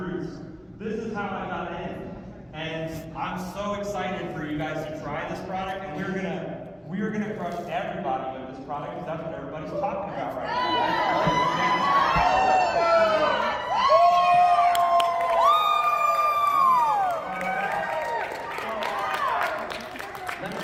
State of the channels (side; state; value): both; identical; correlation 1.00